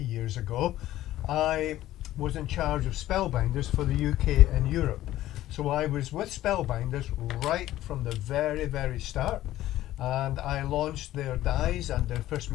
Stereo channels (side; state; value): right; quieter; 14.4 dB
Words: years ago, I was in charge of Spellbinders for the UK and Europe. So I was with Spellbinders right from the very, very start. And I launched their dies and their first